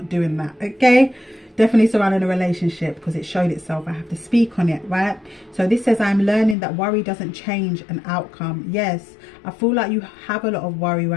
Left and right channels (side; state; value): right; drops out; at 6.6 s